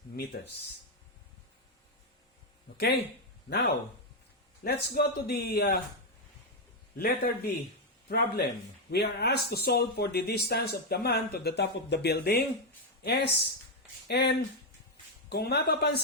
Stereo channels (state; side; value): normal; both; correlation 0.03